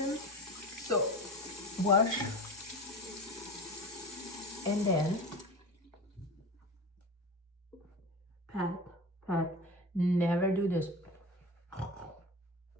So wash, and then pat. Never do this.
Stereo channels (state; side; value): normal; both; correlation 0.29